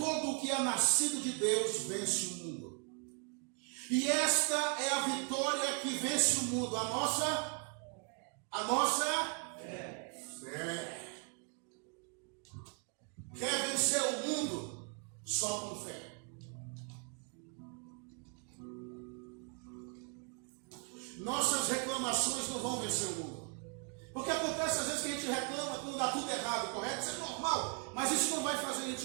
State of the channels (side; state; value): left; quieter; 38.7 dB